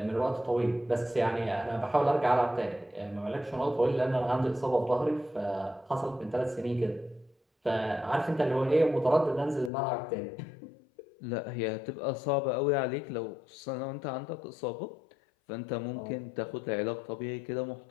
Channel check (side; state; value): right; drops out; at 9.7 s